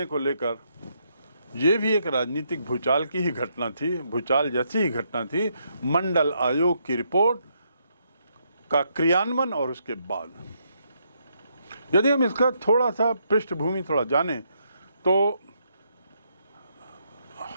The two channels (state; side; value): inverted; both; correlation -0.76